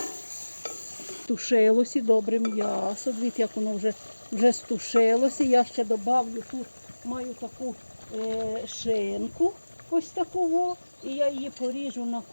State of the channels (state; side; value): inverted; both; correlation -1.00